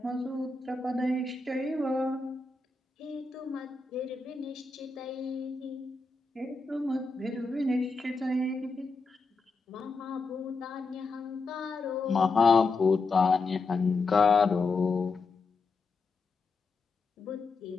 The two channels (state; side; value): quieter; right; 3.9 dB